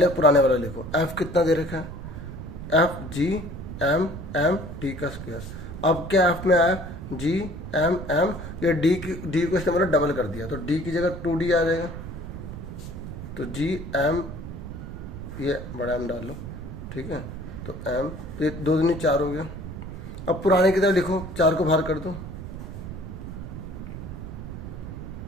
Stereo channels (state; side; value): noise; right; rumble, 9 dB below the sound